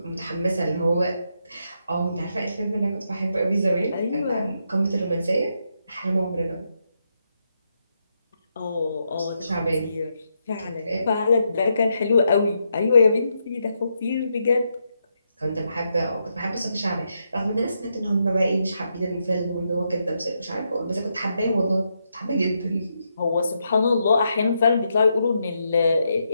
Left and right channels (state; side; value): inverted; both; correlation -0.81